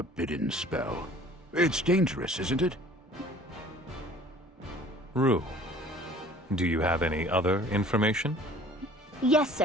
spell. It's dangerous, isn't it? Rue, do you have any other information? Yes,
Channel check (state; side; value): normal; both; correlation 0.50